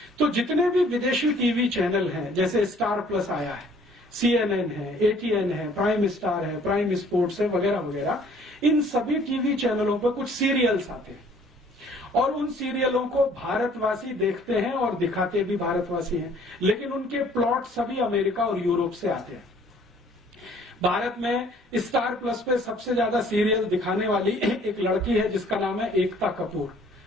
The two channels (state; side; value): normal; both; correlation 0.57